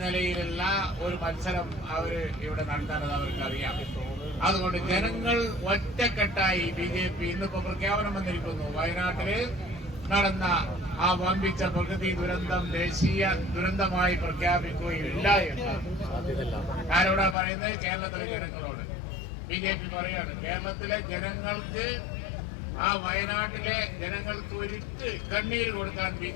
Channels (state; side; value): drops out; right; at 17.4 s